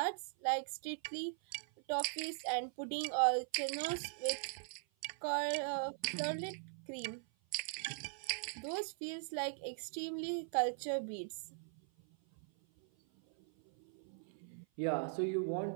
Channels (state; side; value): silent; left; 51 dB below the other